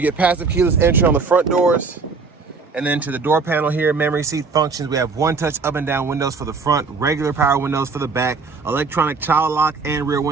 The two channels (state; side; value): quieter; left; 4.6 dB